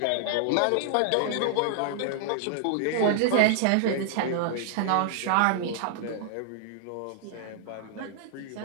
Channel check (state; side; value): different; both; correlation -0.01